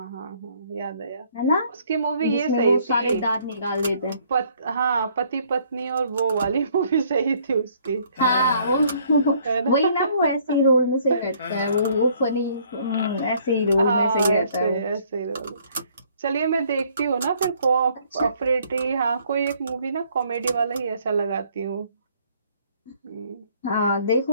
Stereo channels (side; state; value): both; inverted; correlation -0.63